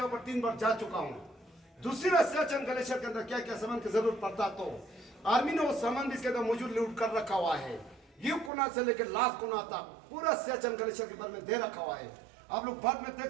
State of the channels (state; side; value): drops out; left; at 8.5 s